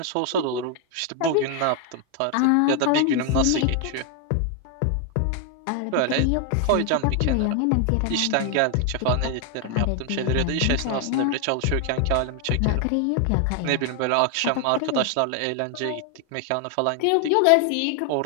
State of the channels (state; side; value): different; both; correlation 0.00